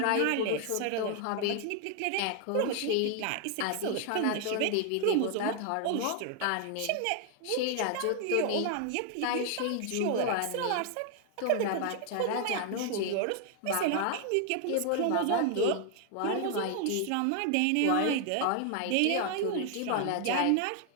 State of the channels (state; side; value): different; both; correlation 0.00